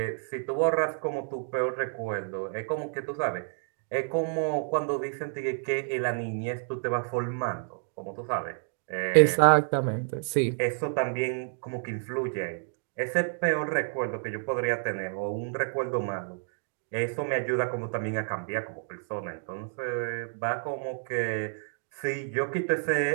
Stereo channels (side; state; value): left; silent; 58 dB below the other